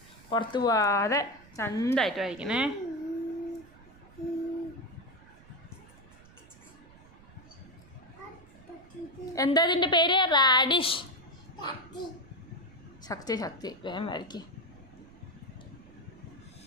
പുറത്ത് പോവാതെ ചന്തമായിട്ട് വരയ്ക്കണേ. എന്താ ഇതിൻ്റെ പേര്? റാഡിഷ്. ശക്തി വേഗം വരയ്ക്ക്.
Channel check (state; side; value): noise; right; rumble, 23 dB below the sound